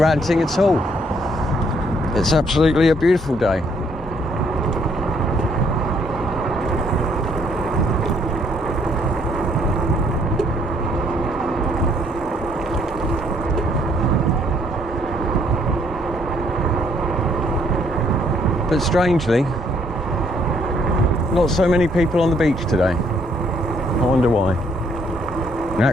at all. It's absolutely a beautiful day. But strangely, not so many people on the beach today. I wonder why. In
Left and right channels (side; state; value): both; normal; correlation 0.67